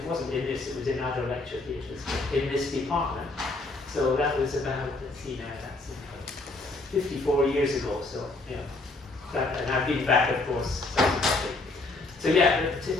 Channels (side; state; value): right; quieter; 3.2 dB